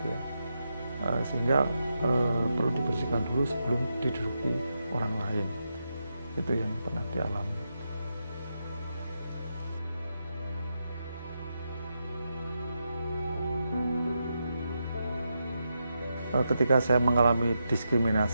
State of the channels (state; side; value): inverted; both; correlation -0.85